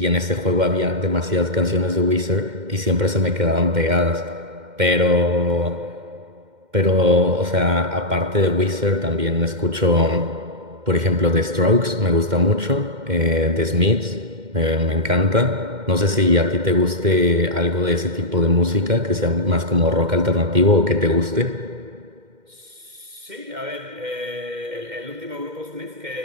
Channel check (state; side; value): late; left; 2.1 ms